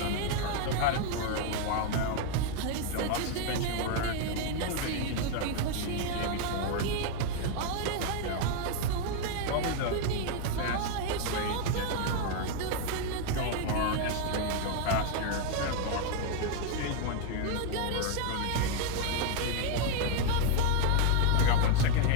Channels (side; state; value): both; different; correlation 0.01